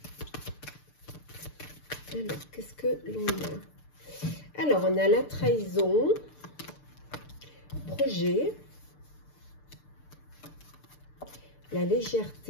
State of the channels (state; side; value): late; right; 6.7 ms